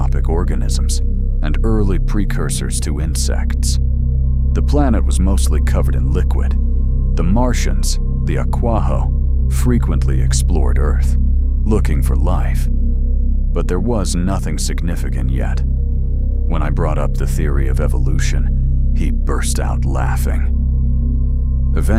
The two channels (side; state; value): both; identical; correlation 1.00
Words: organisms and early precursors to insects. The planet was mostly covered in liquid. The Martians, the Aquaho, frequently explored Earth, looking for life. But there was nothing significant yet. When I brought up the theory of evolution, he burst out laughing.